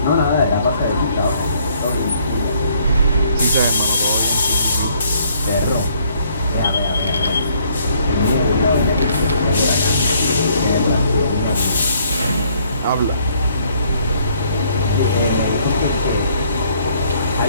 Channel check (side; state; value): both; inverted; correlation -0.65